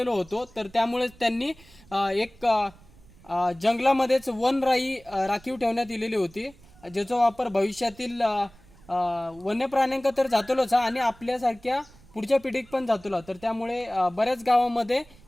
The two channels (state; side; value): noise; right; rumble, 25 dB below the sound